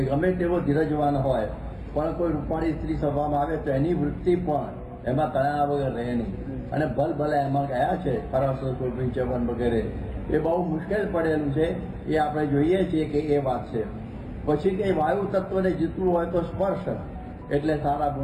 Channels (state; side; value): identical; both; correlation 1.00